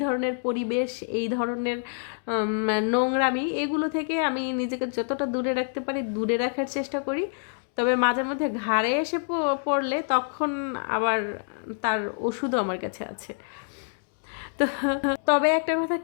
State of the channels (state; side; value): silent; right; digital silence